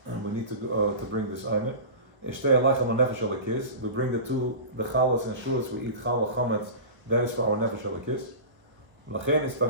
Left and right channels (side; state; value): left; late; 1.2 ms